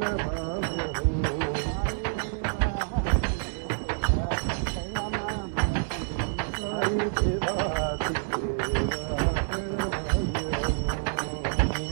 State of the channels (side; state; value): left; silent; 59 dB below the other